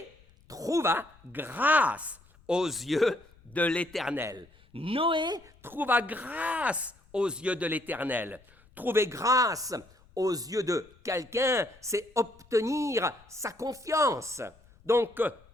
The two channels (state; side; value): noise; left; rumble, 28 dB below the sound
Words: trouva grâce aux yeux de l'Éternel. Noé trouva grâce aux yeux de l'Éternel. Trouver grâce aux yeux de quelqu'un, c'est obtenir sa confiance. Donc,